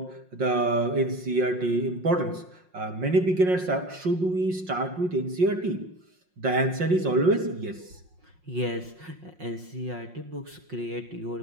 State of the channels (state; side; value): late; left; 5.6 ms